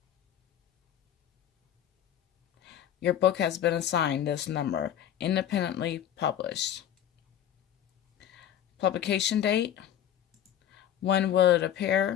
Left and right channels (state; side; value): quieter; right; 10.6 dB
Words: your book has been assigned this number, independently published. Publication date, when will it